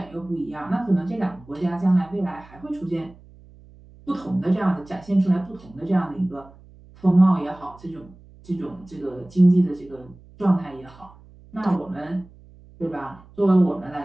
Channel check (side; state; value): right; noise; hum, 23 dB below the sound